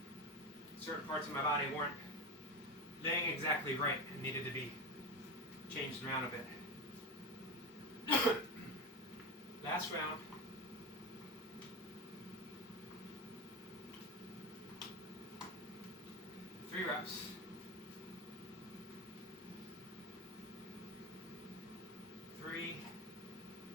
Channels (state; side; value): normal; both; correlation 0.21